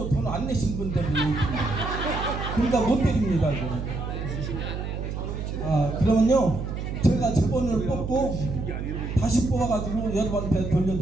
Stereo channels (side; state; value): right; noise; hum, 5 dB below the sound